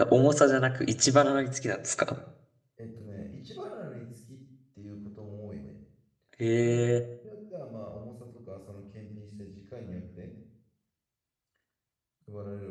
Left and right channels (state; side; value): identical; both; correlation 1.00